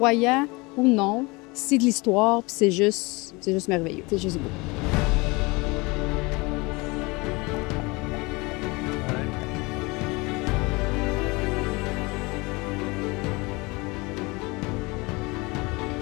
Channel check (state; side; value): quieter; right; 25.4 dB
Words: ou non, c'est de l'histoire, puis c'est juste merveilleux. C'est juste beau.